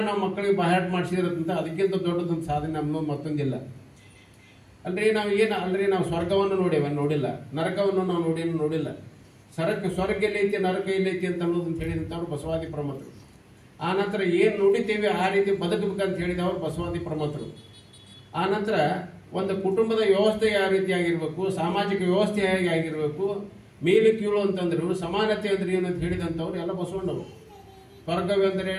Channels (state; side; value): identical; both; correlation 1.00